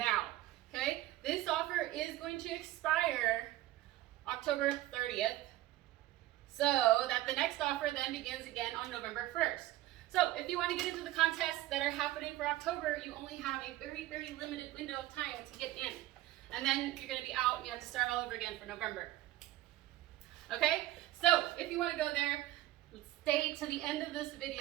Okay? This offer is going to expire October 30th, so that the next offer then begins again on November 1st. So if you want to get into the contests that are happening for October, you only have a very, very limited window of time to get in. And then you're going to be out and you have to start all over again for November. Okay? So if you want to go there, stay to the end of this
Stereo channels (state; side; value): quieter; left; 15.7 dB